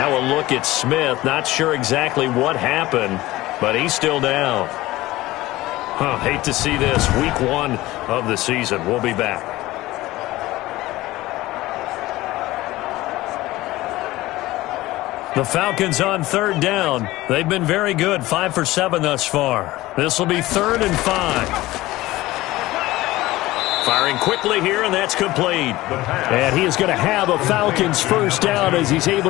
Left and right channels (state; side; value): quieter; right; 17.9 dB